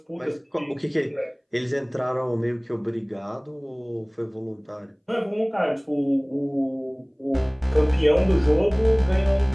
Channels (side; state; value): both; identical; correlation 1.00